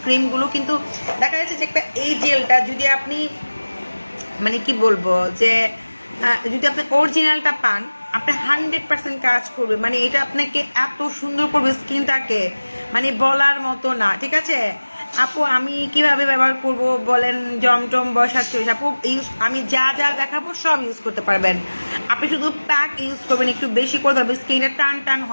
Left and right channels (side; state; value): both; inverted; correlation -1.00